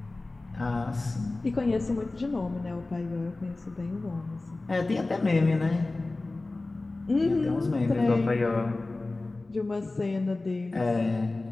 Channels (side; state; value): right; quieter; 3.1 dB